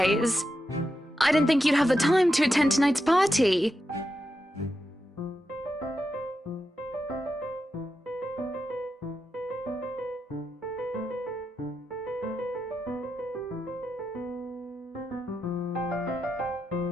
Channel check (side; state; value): both; normal; correlation 0.87